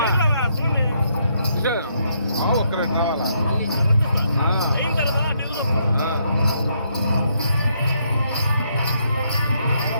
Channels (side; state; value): both; inverted; correlation -0.73